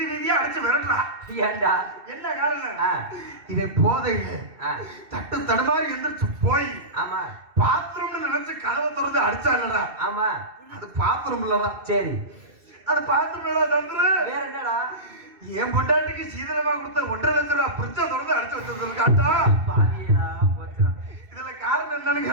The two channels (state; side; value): late; left; 2.7 ms